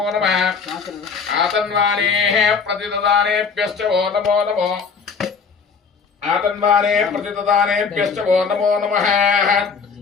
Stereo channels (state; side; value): quieter; right; 5.5 dB